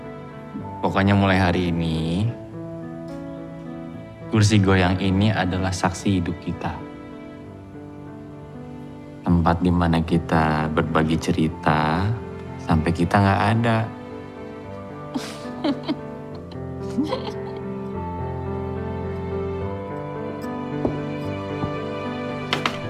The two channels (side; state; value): both; identical; correlation 1.00